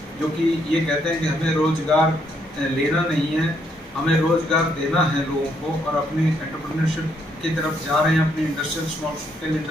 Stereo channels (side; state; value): both; normal; correlation 0.73